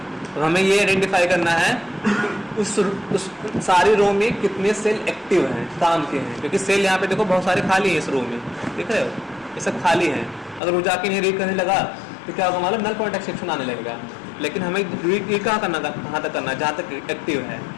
तो हमें ये आइडेंटिफाई करना है उस सारी रो में कितने सेल एक्टिव हैं, काम के हैं, क्योंकि सेल यहाँ पे देखो बहुत सारे खाली हैं इस रो में। देख रहे हो, ये सब खाली है। अगर वो जाके नहीं रीड करने लगा तो क्या होगा मालूम, नल पॉइंट एक्सेप्शन आने लगेगा। लेकिन हमें रीड कहाँ करना, कहाँ तक करना, जहाँ तक एक्टिव है।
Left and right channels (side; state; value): right; drops out; at 10.6 s